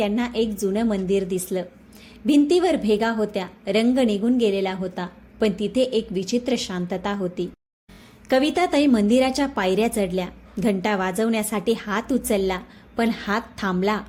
एक जुनं मंदिर दिसलं. भिंतीवर भेगा होत्या, रंग निघून गेलेला होता, पण तिथे एक विचित्र शांतता होती. कविताताई मंदिराच्या पायऱ्या चढल्या. घंटा वाजवण्यासाठी हात उचलला, पण हात थांबला.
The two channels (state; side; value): identical; both; correlation 1.00